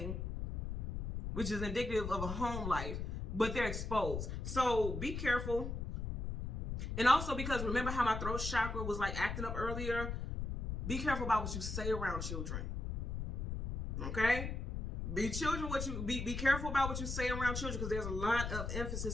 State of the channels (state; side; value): noise; left; rumble, 3 dB below the sound